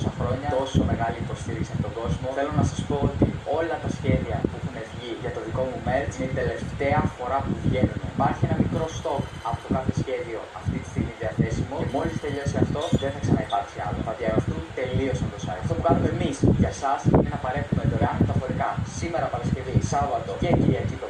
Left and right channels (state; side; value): identical; both; correlation 1.00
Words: χρόνια, τόσο μεγάλη υποστήριξη από τον κόσμο. Θέλω να σας πω ότι όλα τα σχέδια που έχουν βγει για το δικό μου merch είναι η τελευταία φορά που βγαίνουν. Υπάρχει ένα μικρό stock από το κάθε σχέδιο αυτή τη στιγμή διαθέσιμο και μόλις τελειώσει αυτό δεν θα ξαναυπάρξει άλλο. Θα διαγραφούν τελείως από το site. Αυτό που κάνουμε εμείς για εσάς είναι να παρέχουμε δωρεάν μεταφορικά σήμερα Παρασκευή, Σάββατο και Κυριακή το